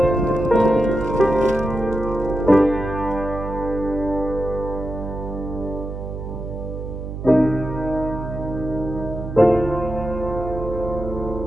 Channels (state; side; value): noise; right; hum, 7 dB below the sound